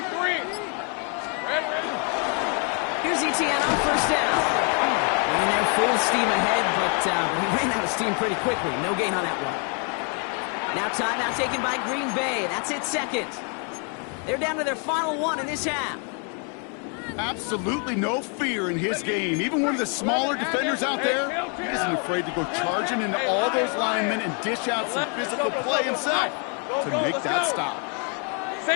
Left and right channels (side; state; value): right; quieter; 39.4 dB